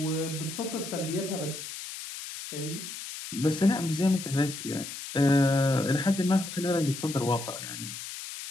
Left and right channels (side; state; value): left; noise; hiss, 9 dB below the sound